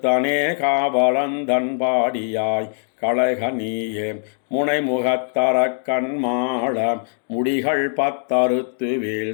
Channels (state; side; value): silent; right; 62 dB below the other